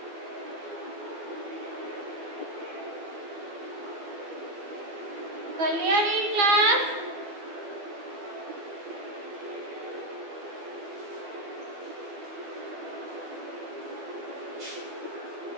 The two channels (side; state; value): left; late; 12 ms